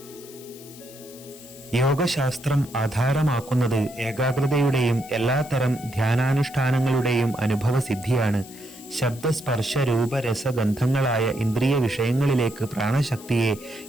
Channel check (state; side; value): noise; left; hiss, 19 dB below the sound